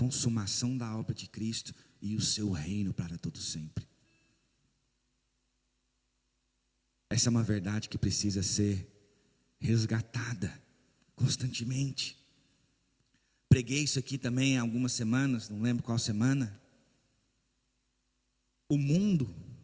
da obra de Cristo e o seu reino para todo sempre. Essa é uma verdade que precisa ser resgatada constantemente. Preguei isso aqui também há algumas semanas, não lembro qual semana. O mundo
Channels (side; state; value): both; identical; correlation 1.00